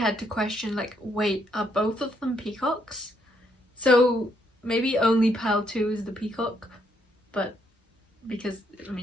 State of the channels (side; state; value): both; normal; correlation 0.73